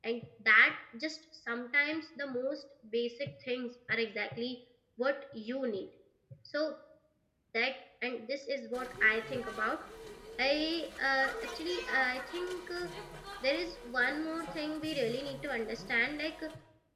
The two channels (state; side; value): identical; both; correlation 1.00